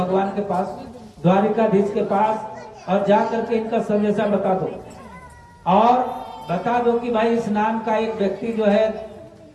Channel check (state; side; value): identical; both; correlation 1.00